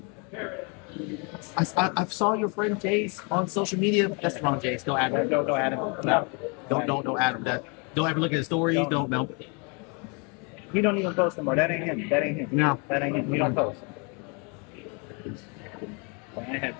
I saw your friend Jace on social media. That's wrong, Jace. Don't add him. Don't add him. No. Don't add him. Don't ever look at his stories. Don't. You don't even post anymore. That ain't him. That ain't him. No. That ain't him. You don't post. When I had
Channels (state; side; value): quieter; right; 33.9 dB